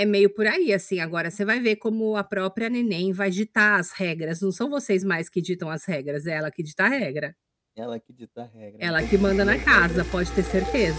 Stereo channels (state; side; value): identical; both; correlation 1.00